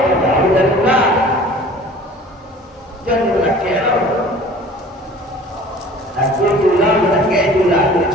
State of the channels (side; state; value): both; normal; correlation 0.46